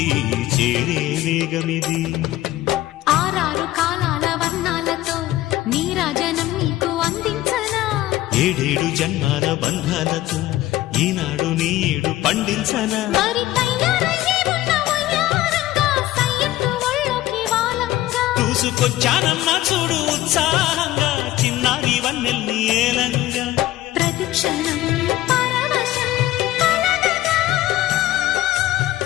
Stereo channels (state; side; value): quieter; right; 15.4 dB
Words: చేరే వేగమిది. ఆరారు కాలాల వర్ణాలతో నీరాజనం నీకు అందించనా, ఏడేడు జన్మాల బంధాలతో ఈనాడు నీడు పండించనా. మరి తయారయ్యే ఉన్న వయ్యారంగా సయ్యత్తు ఒళ్ళోకి వాలంగా చూసుకొచ్చానమ్మా చూడు ఉత్సాహంగా చిన్నారి వన్నెల్ని ఏలంగా. ప్రతిక్షణం పరవశం కలగగా